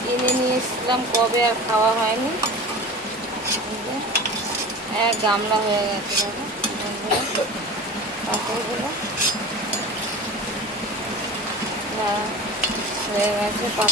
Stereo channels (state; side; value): normal; both; correlation 0.35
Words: কিনে নিয়ে এসেছিলাম, কবে আর খাওয়া হয়নি। এক গামলা হয়ে গেছে দেখো বন্ধুরা পাঁপড়গুলো হয়ে গেছে।